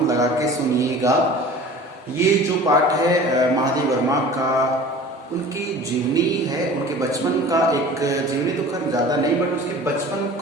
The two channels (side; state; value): both; normal; correlation 0.42